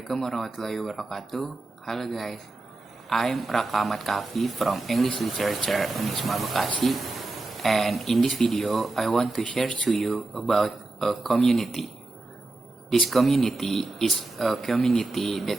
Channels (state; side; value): quieter; left; 3.1 dB